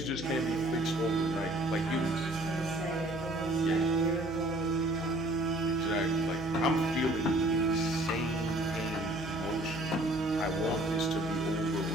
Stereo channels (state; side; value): noise; right; hum, 15 dB below the sound